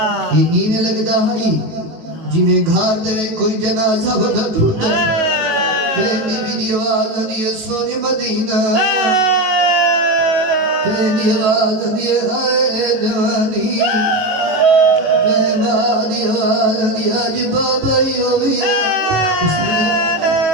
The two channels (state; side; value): late; left; 18 ms